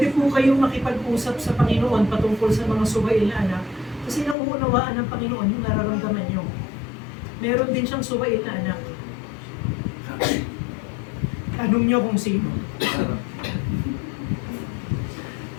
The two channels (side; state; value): right; drops out; at 4.4 s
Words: po kayong makipag-usap sa Panginoon patungkol sa mga suwail na anak kasi nauunawaan ng Panginoon yung nararamdaman nyo. Meron din siyang suwail na anak. Tanong nyo kung sino.